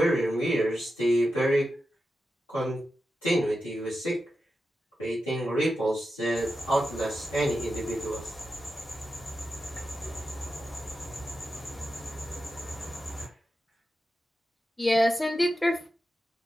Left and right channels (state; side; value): normal; both; correlation 0.90